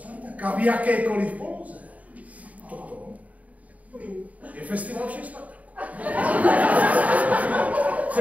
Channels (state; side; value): late; left; 0.070 ms